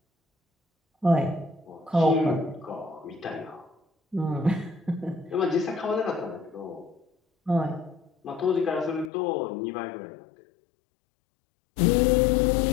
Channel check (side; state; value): right; drops out; at 9.1 s